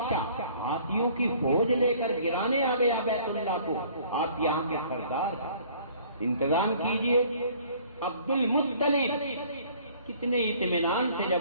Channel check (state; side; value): inverted; both; correlation -0.55